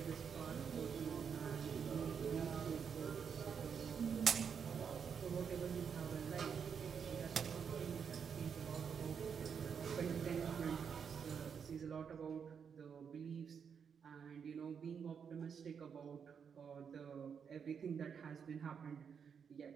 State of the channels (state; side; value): quieter; left; 6.9 dB